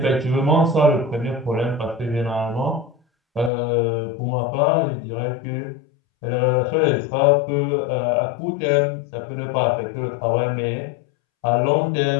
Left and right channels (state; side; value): drops out; right; at 3.5 s